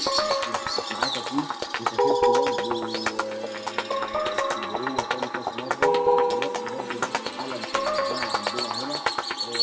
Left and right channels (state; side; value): identical; both; correlation 1.00